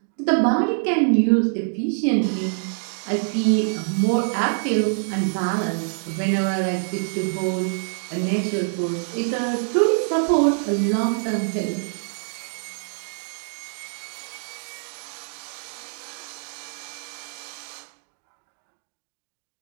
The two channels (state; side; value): silent; left; digital silence